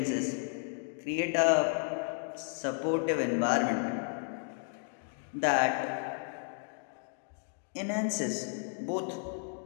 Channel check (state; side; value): silent; right; 55 dB below the other